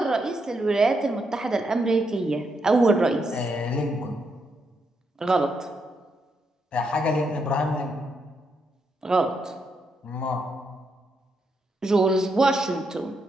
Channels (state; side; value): normal; both; correlation 0.80